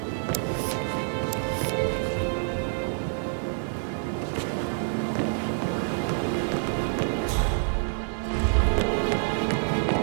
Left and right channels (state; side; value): silent; left; 60 dB below the other